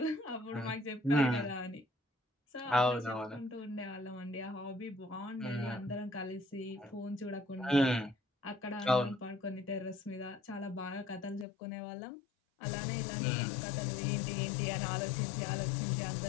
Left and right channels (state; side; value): drops out; right; at 11.5 s